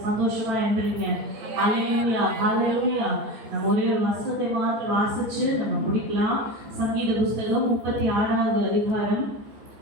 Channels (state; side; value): late; left; 14 ms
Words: சந்தோஷமா என்றீங்க? ஹல்லேலூயா, ஹல்லேலூயா. நம்ம ஒரே ஒரு வசனத்தை மாத்திரம் வாசிச்சு நம்ம முடிக்கலாம். சங்கீத புஸ்தகம் 36வது அதிகாரம்